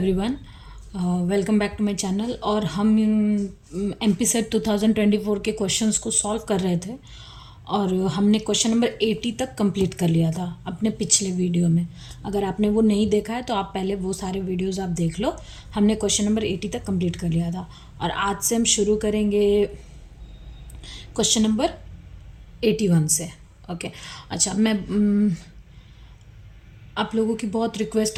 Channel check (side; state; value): both; identical; correlation 1.00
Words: welcome back to my channel. और हम MP set 2024 के क्वेश्चंस को सॉल्व कर रहे थे और हमने क्वेश्चन नंबर 80 तक कंप्लीट कर लिया था अपने पिछले वीडियो में। अगर आपने वो नहीं देखा है तो आप पहले वो सारे वीडियोस आप देख लो। हमने क्वेश्चन नंबर 80 तक कंप्लीट कर लिया था और आज से हम शुरू करेंगे क्वेश्चन नंबर 81 से। ओके, अच्छा आप लोगों की बहुत